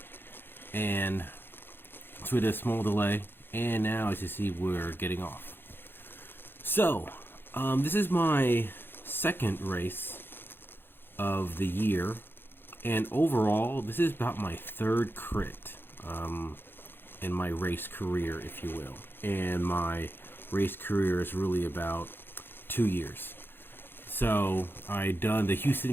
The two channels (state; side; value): late; right; 0.10 ms